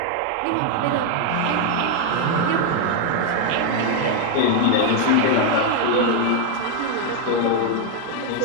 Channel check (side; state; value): both; different; correlation 0.01